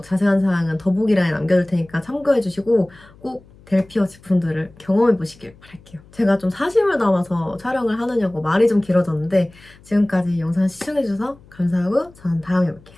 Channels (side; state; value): left; noise; hum, 25 dB below the sound